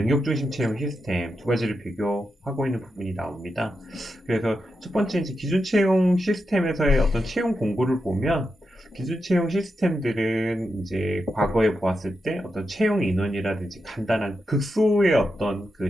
중심 채용 시스템 두 가지를 비교하고 있는 부분이 나옵니다. 그래서 첫 번째 이제 기존 채용 시스템에서의 어떤 채용 공고를 보면 기술 채용 시스템들은 이제 과거에 보았을 때 어떤 채용 인원이라든지 간단한 극소의 어떤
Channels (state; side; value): normal; both; correlation 0.87